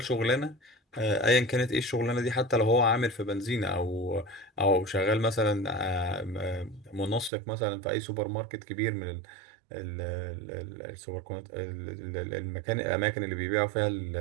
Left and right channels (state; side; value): drops out; left; at 7.3 s